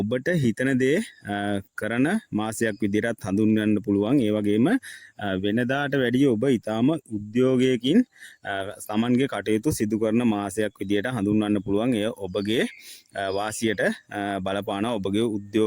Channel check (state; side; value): identical; both; correlation 1.00